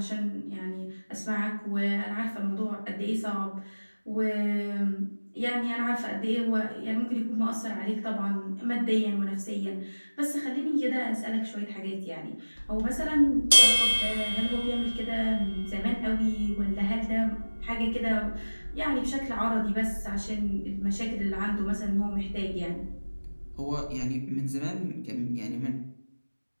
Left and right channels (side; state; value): both; inverted; correlation -1.00